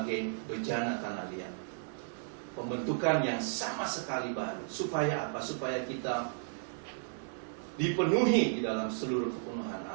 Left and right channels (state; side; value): silent; left; 55 dB below the other